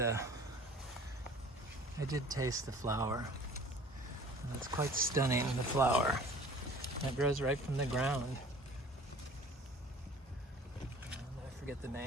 flower. And it's quite stunning, the flower. It grows right from the ground. I forget the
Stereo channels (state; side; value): normal; both; correlation 0.48